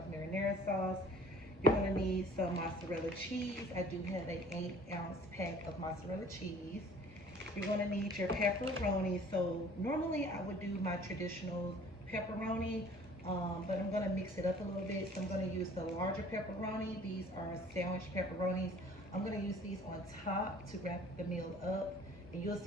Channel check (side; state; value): both; normal; correlation 0.51